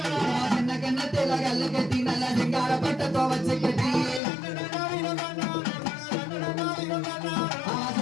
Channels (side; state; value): right; drops out; at 4.2 s